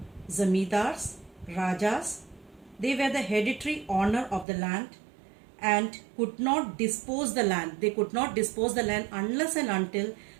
zamindars, rajas, they were the hereditary owner of the land and could not dispose the land. They could not dispose the land unless and until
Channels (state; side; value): drops out; left; at 4.5 s